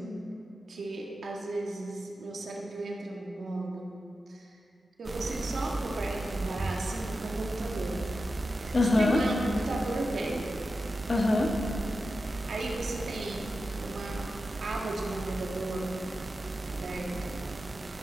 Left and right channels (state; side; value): normal; both; correlation 0.91